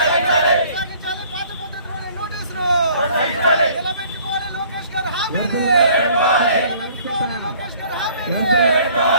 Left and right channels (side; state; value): both; inverted; correlation -0.55